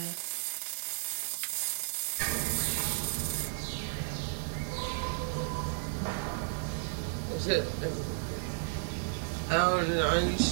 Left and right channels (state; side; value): silent; left; 56 dB below the other